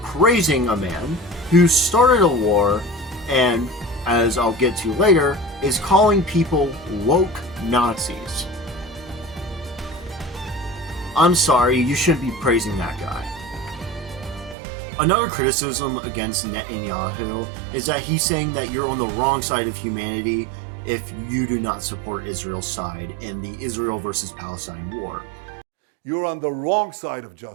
praising a man who started a war and, as I'll get to later, is calling people woke Nazis. I'm sorry, you shouldn't be praising that guy. Another criticism against Netanyahu is that he's saying that you're on the wrong side of humanity if you do not support Israel's side in the Israel versus Palestine war. You're on the wrong side of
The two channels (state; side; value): drops out; left; at 14.6 s